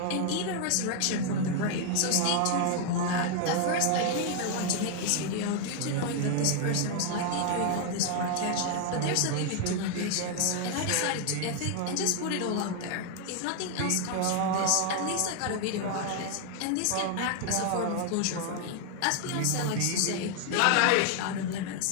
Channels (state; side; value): different; both; correlation 0.00